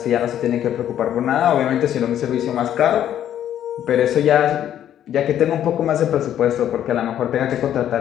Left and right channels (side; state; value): right; quieter; 10.7 dB